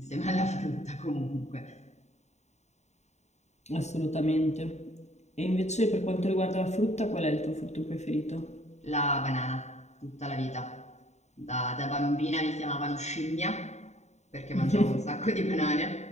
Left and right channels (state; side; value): late; right; 0.33 ms